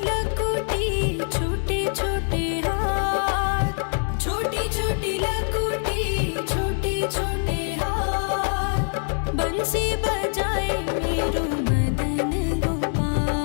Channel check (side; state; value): right; silent; 62 dB below the other